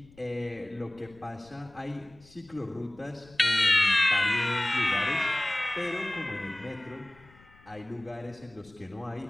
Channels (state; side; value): noise; left; rumble, 25 dB below the sound